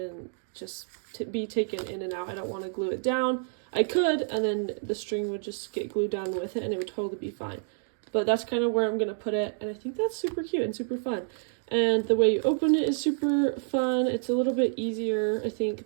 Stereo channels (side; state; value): left; silent; digital silence